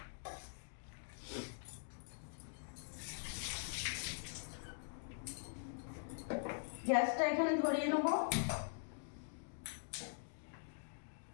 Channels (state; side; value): silent; right; digital silence